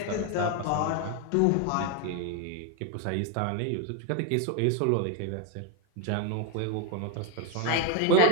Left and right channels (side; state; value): both; different; correlation 0.02